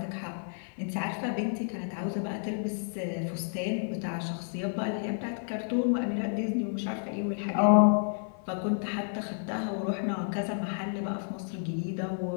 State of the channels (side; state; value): right; silent; 57 dB below the other